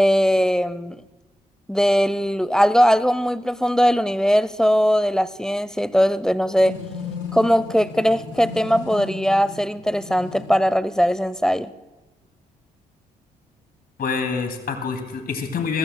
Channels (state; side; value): normal; both; correlation 0.95